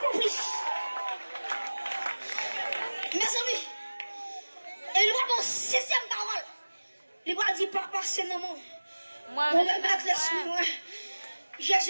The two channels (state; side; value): inverted; both; correlation -1.00